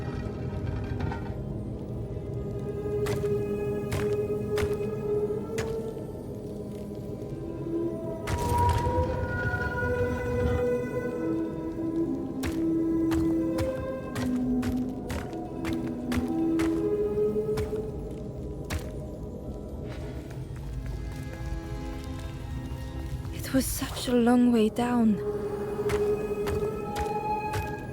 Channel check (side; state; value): both; identical; correlation 1.00